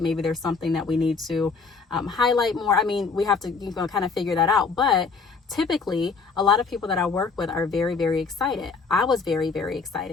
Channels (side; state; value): right; quieter; 4.8 dB